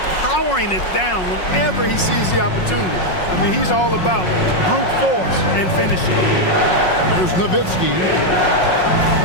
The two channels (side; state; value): right; late; 5.5 ms